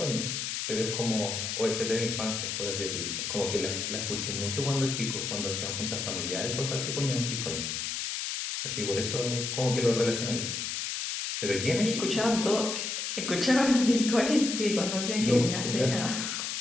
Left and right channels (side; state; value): left; noise; hiss, 3 dB below the sound